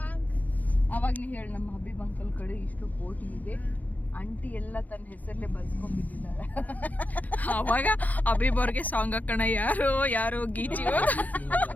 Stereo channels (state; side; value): late; right; 0.079 ms